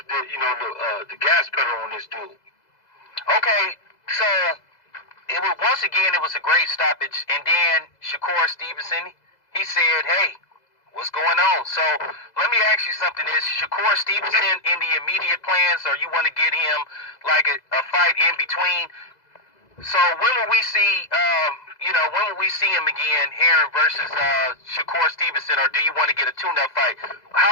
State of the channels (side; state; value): right; late; 2.0 ms